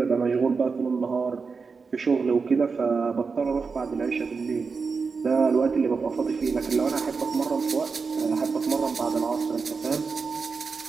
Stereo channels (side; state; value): left; quieter; 4.9 dB